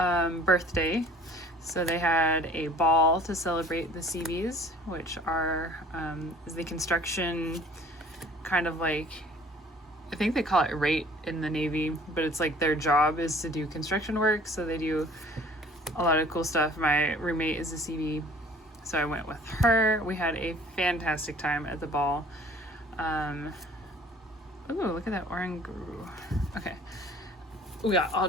birthday. So they had a ball to celebrate the CBs, which are is the construction kind of like, I think they call it rate in the Navy, but it's like their job is to do construction work. So they do a lot of cool stuff. My roommate is a CB, so I went with her. We had a fantastic time at the ball. Ooh, look at that Oranguru. Okay. We got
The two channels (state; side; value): normal; both; correlation 0.51